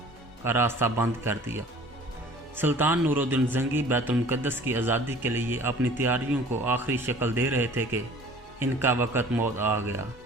کا راستہ بند کر دیا۔ سلطان نور الدین زنگی بیت المقدس کی آزادی کے لیے اپنی تیاریوں کو آخری شکل دے رہے تھے کہ ان کا وقت موت آ گیا۔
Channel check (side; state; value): both; normal; correlation 0.48